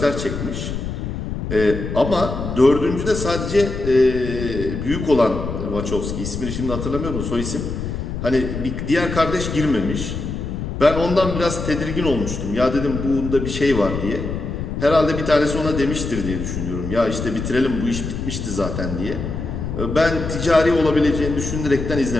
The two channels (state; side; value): noise; left; rumble, 5 dB below the sound